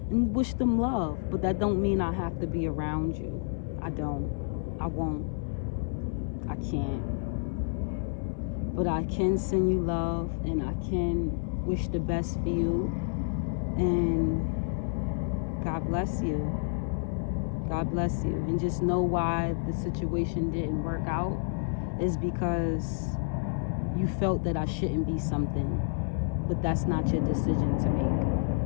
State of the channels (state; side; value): silent; right; digital silence